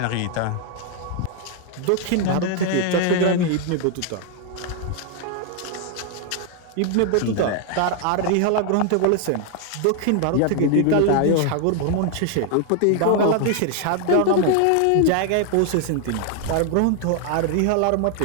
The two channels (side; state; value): both; different; correlation 0.00